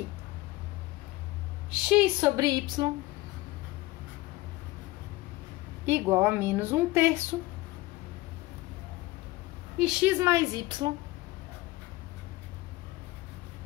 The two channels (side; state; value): right; quieter; 19.4 dB